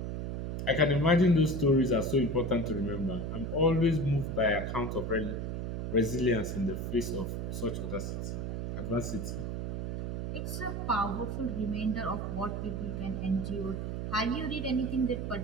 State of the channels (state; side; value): noise; right; hum, 4 dB below the sound